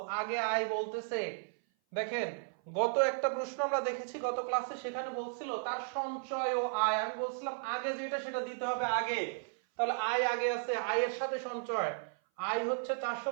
আগে আয় বলতেছে। দেখেন, গত একটা প্রশ্ন আমরা দেখেছি গত ক্লাসে, সেখানে বলছিল তার সঞ্চয় ও আয়, আমি বলছিলাম আগে যেটা সেটা দিতে হবে আগে, তাহলে আয় আগে আছে, আয়ের সাথে সঞ্চয়। আয় হচ্ছে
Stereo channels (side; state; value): left; silent; 55 dB below the other